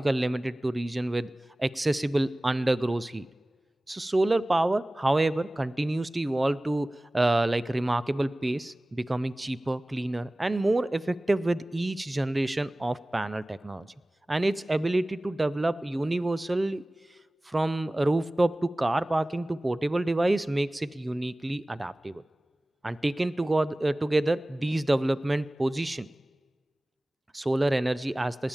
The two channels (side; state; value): both; normal; correlation 0.98